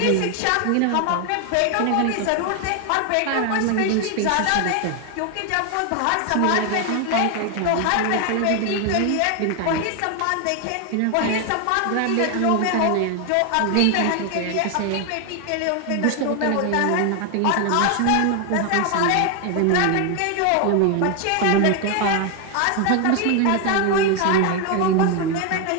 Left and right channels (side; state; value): both; different; correlation 0.01